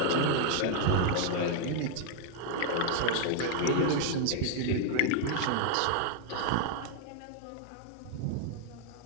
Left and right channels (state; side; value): different; both; correlation 0.00